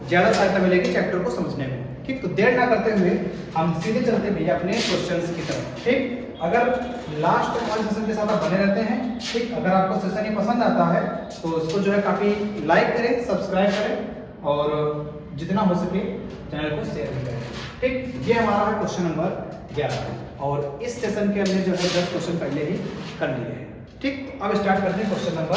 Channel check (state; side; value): identical; both; correlation 1.00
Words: ज़्यादा सहायता मिलेगी चैप्टर को समझने में। ठीक, तो देर ना करते हुए हम सीधे चलते भैया अपने क्वेश्चंस की तरफ। ठीक, अगर लास्ट वाले सेशन के साथ आप बने रहते हैं, ठीक, अगर आपको सेशन ये पसंद आता है तो इसको जो है काफ़ी लाइक करें, सब्सक्राइब करें और जितना हो सके चैनल को शेयर भी करें। ठीक, ये हमारा है क्वेश्चन नंबर 11 और इस सेशन के हमने जो है 10 क्वेश्चन पहले ही कर लिए हैं। ठीक, अब स्टार्ट करते हैं क्वेश्चन नंबर